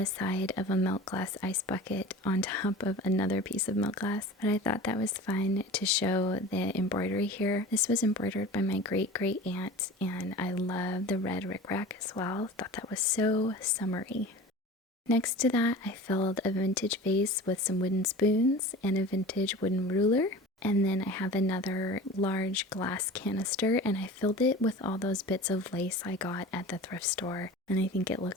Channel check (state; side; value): normal; both; correlation 0.37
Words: side of a milk glass ice bucket on top of another piece of milk glass, but I thought that was fun to show the embroidery here. This was embroidered by my great-great aunt, and I love the red rickrack as well. Thought that was so summery. Next to that, I filled a vintage vase with some wooden spoons and a vintage wooden ruler. And then I have another large glass canister, and I filled it with all those bits of lace I got at the thrift store, and I think it